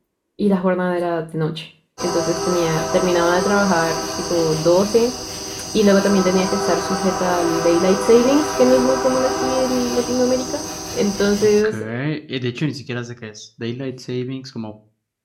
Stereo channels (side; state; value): both; identical; correlation 1.00